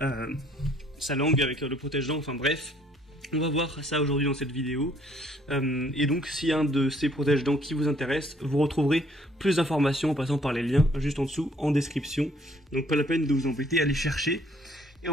sa langue avec le protège-dents, enfin bref. On va voir ça aujourd'hui dans cette vidéo. Et donc, s'il y a un de ces protège-dents qui vous intéresse, vous retrouverez plus d'informations en passant par les liens juste en dessous en description. Donc, pas la peine de vous embêter à les chercher. Et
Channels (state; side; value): normal; both; correlation 0.63